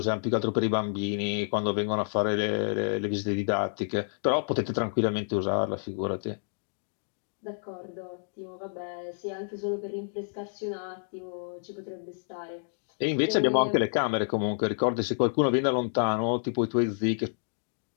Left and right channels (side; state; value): right; silent; digital silence